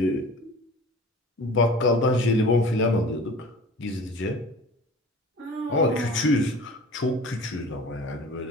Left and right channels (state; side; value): normal; both; correlation 0.41